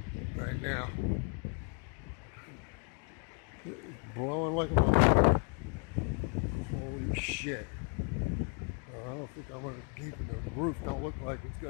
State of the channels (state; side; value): quieter; right; 38.1 dB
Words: right now. It's blowing like a... Holy shit. I don't think I'm going to keep it. The roof don't look like it's